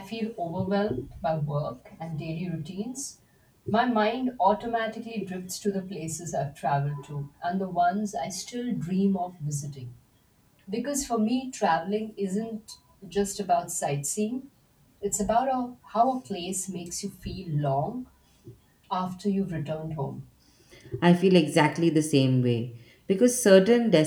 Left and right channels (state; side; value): identical; both; correlation 1.00